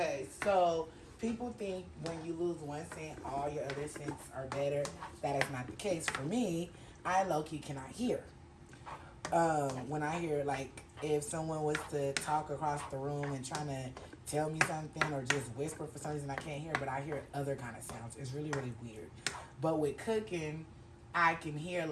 so people think when you lose one scent, all your other scents are better. That is not the case for me. I low-key cannot hear. When I hear, like, if someone was to talk across the room and trying to tell me something or just whisper for some reason, I can't hear, but I hear other kind of sounds. It's really, really weird. But with cooking, I can hear,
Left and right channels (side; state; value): both; identical; correlation 1.00